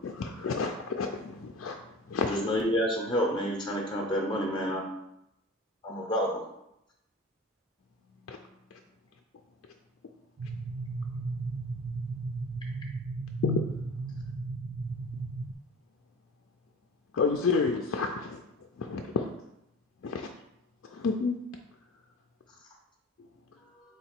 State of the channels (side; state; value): both; normal; correlation 0.38